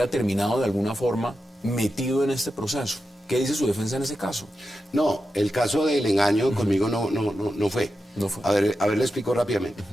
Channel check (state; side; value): normal; both; correlation 0.90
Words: terminado de alguna forma metido en este proceso? ¿Qué dice su defensa en ese caso? No, el caso del engaño conmigo no fue. No fue. A ver, le explico rápidamente.